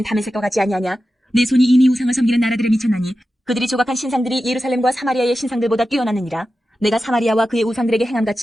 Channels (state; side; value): normal; both; correlation 0.92